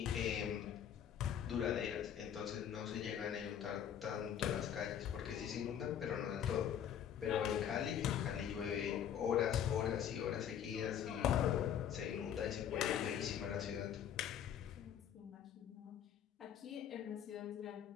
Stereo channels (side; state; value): right; quieter; 9.2 dB